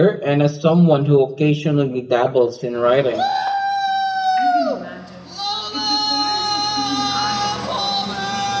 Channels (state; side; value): identical; both; correlation 1.00